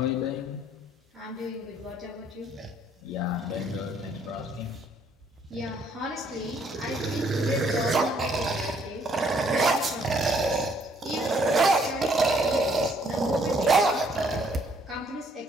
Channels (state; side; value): normal; both; correlation 0.66